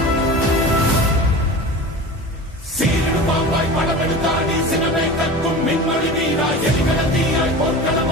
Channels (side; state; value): both; normal; correlation 0.33